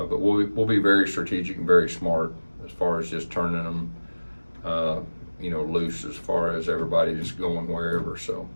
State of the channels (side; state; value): both; inverted; correlation -1.00